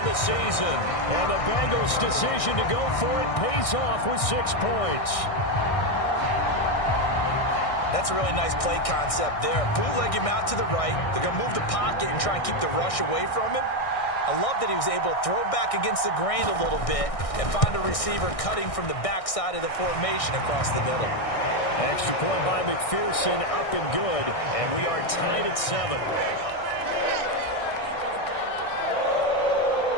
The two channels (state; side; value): late; right; 1.6 ms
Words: the season. And the Bengals' decision to go for it pays off with 6 points. That's a really nice play concept there. Bootleg him out to the right. They're going to move the pocket and try and keep the rush away from him. I love that he was able to throw back against the grain a little bit and find a receiver cutting from the backside of the formation across the middle. Extra point by McPherson, up and good, and we are tied at 7.